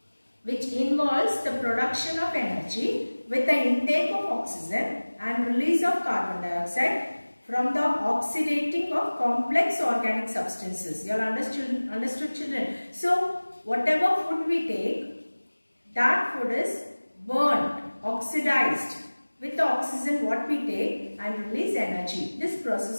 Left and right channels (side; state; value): both; inverted; correlation -1.00